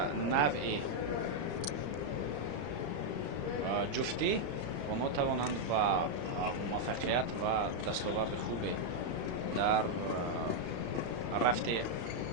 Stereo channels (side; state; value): left; late; 34 ms